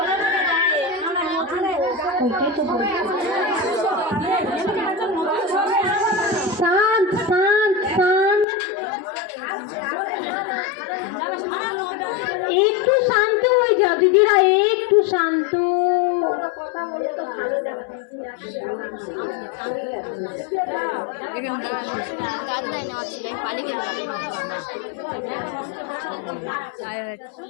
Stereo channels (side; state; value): right; drops out; at 8.5 s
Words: শান্ত শান্ত শান্ত, একটু শান্ত হয়ে যাও দিদিরা, একটু শান্ত।